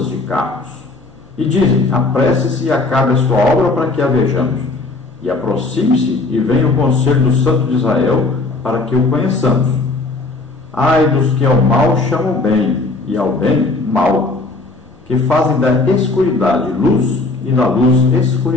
de carros. E dizem: apresse-se e acabe a sua obra para que a vejamos. E aproxime-se e venha o conselho do Santo de Israel para que o conheçamos. Ai dos que ao mal chamam bem e ao bem mal, que fazem da escuridade luz e da luz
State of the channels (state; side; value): quieter; right; 3.3 dB